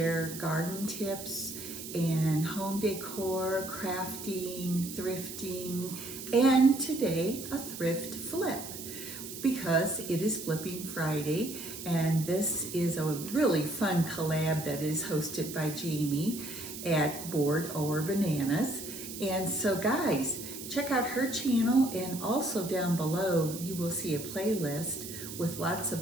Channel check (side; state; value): right; noise; hiss, 10 dB below the sound